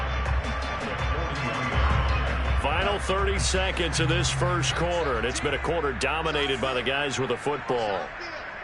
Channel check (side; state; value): both; identical; correlation 1.00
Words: Final 30 seconds of this first quarter, and it's been a quarter dominated by the guys with the football.